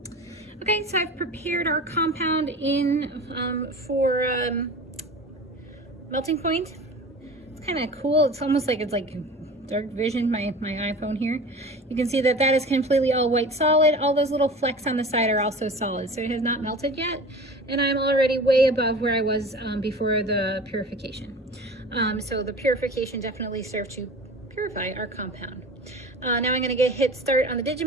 Okay, so I've prepared our compound in for melting point. It's kind of cool. It's almost like it's like dark vision, my iPhone here. You can see that that is completely all white solid. All those little flecks on the side are also solid, so it has not melted yet. And I'm already way above where I was before the purification. So the purification definitely served to purify our compound. Now I'm going to hit start on the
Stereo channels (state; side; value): normal; both; correlation 0.37